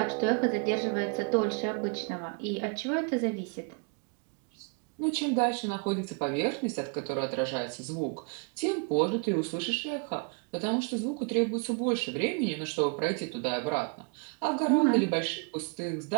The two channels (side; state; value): left; quieter; 37.8 dB